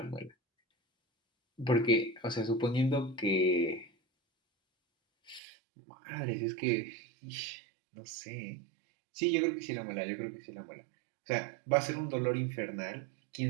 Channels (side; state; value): left; drops out; at 5.4 s